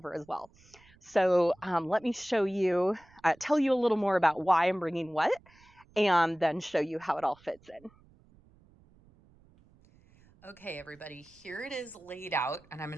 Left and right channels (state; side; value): noise; right; rumble, 28 dB below the sound